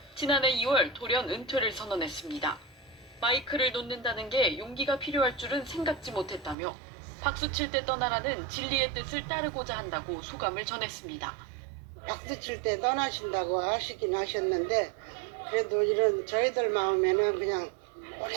지난해 2월 돌연 은퇴를 선언했습니다. 마이크를 놓는다는 게 용기가 필요할 줄은 생각지 못했다며 박수 칠 때 떠나라는 진리의 뜻을 따르고자 한다고 소감을 전했습니다. 박수 칠 때 떠나신다고 하시긴 하셨는데 그래도 이런 저희들 마음에는 그냥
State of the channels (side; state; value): left; drops out; at 6.6 s